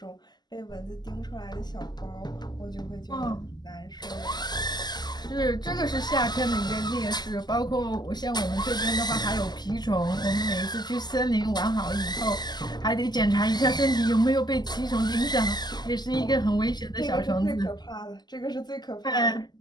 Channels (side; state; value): right; late; 0.21 ms